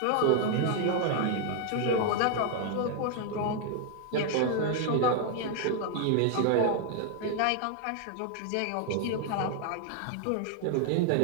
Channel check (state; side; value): different; both; correlation 0.00